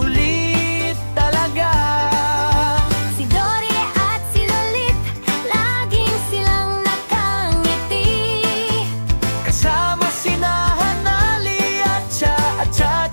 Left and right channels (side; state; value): both; inverted; correlation -1.00